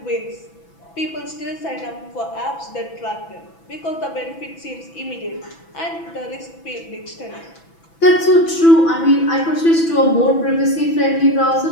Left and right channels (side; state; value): right; late; 6.0 ms